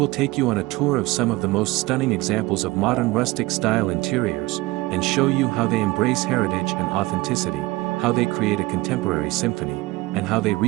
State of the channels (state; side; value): quieter; left; 20.7 dB